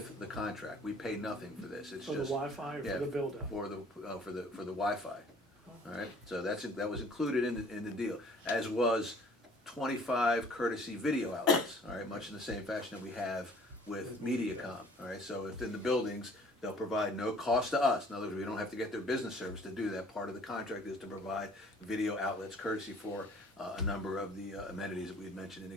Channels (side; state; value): both; normal; correlation 0.54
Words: the contract. We pay nothing for this. It's For the just Wi-Fi or yeah, for the build out? for the Wi-Fi. All right, so that was included in the deal, as was 25 courtesy video outlets. All right, much in the same fashion that we have with MediaCom. All right, so within the buildings, they'll provide no cost to us. In other words, we don't have to get their business service to do that. Part of the contract is to provide video outlets courtesy for a number of the amenities that we had mentioned in